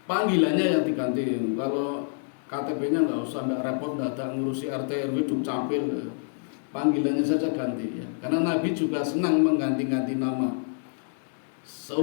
Panggilannya yang diganti. Kalau KTP-nya nggak usah, nggak repot, nggak ada ngurusi RT RW dukcapil. Panggilannya saja ganti ya. Karena Nabi juga senang mengganti-ganti nama.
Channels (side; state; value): right; silent; digital silence